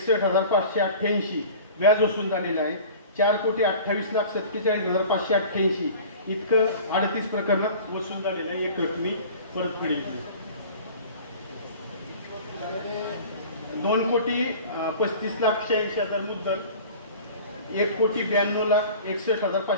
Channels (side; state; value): both; inverted; correlation -0.41